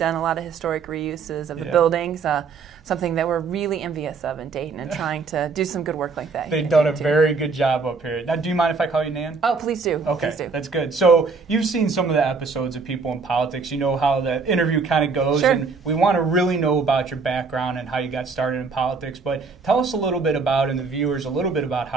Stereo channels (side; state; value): left; quieter; 4.7 dB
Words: a lot of historic reuses of the buildings. Something that we're really envious of in Dayton and trying to do some good work like that. They've done a very good job up here. Now, do you mind if I call you Nan? Oh, please do. Okay, please do. That's good. So you've seen some of the episodes of People in Politics. You know how the interview kind of goes. Sure. And we want to really know about your background and how you got started in politics. But tell us a little bit about, and the viewers, a little bit